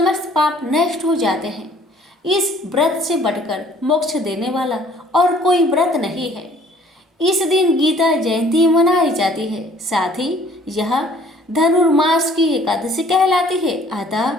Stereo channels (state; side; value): normal; both; correlation 0.56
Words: पाप नष्ट हो जाते हैं। इस व्रत से बढ़कर मोक्ष देने वाला और कोई व्रत नहीं है। इस दिन गीता जयंती मनाई जाती है। साथ ही यह धनुर्मास की एकादशी कहलाती है। अतः